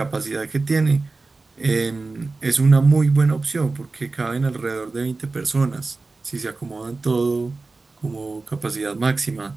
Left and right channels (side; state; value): left; quieter; 3.7 dB